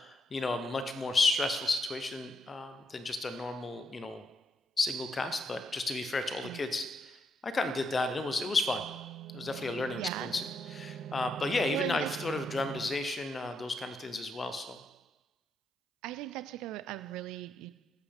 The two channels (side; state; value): both; normal; correlation 0.79